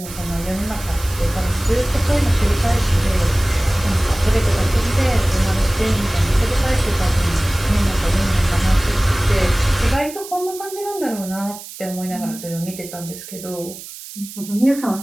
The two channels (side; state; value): right; noise; hiss, 14 dB below the sound